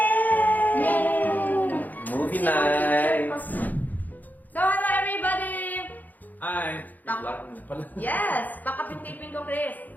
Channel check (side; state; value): right; late; 0.083 ms